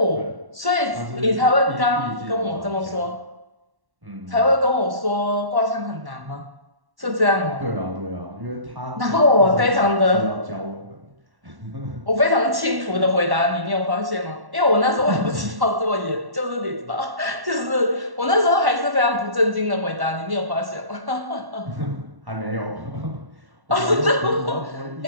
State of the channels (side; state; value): left; late; 1.1 ms